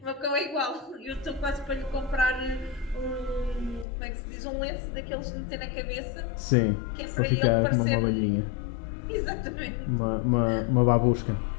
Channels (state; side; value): drops out; right; at 3.9 s